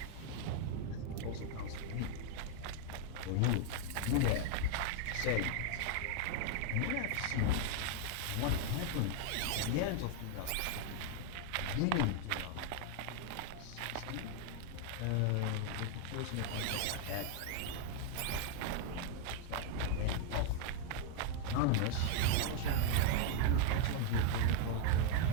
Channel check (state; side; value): different; both; correlation 0.00